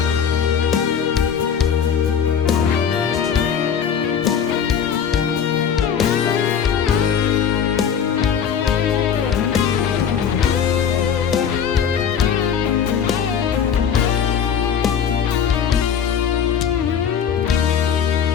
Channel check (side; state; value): right; quieter; 7.7 dB